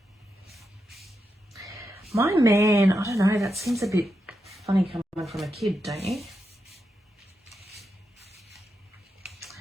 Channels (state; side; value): normal; both; correlation 0.86